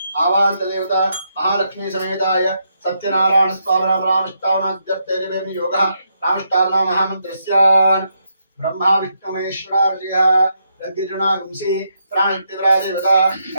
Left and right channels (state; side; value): inverted; both; correlation -0.79